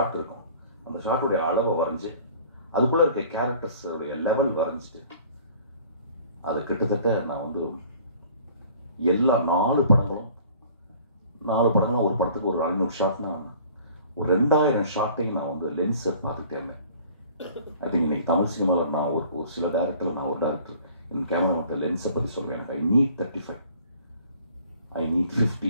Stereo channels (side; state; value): both; inverted; correlation -0.51